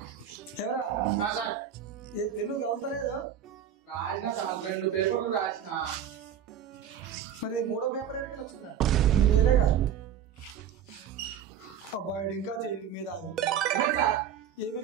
ఎవరా పెన్ను కలుతలేదు? రాసిన సార్ 2 పేపర్లు రాసిన. మరి 3వ పేపర్ ఎక్కడికి వచ్చిందిరా? నేను వేయలేగా. అబ్బాయి ఇంకా మీద అది ఏం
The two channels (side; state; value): left; quieter; 8.9 dB